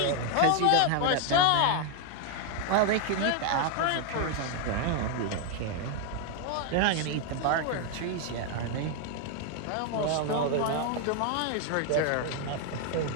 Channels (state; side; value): different; both; correlation 0.00